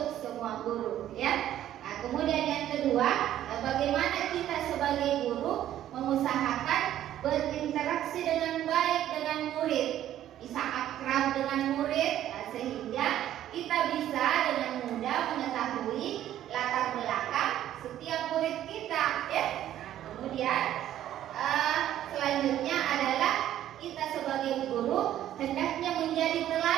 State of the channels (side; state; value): left; quieter; 12.1 dB